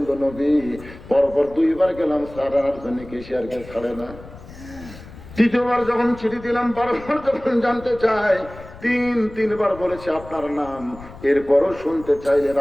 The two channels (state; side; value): noise; left; rumble, 17 dB below the sound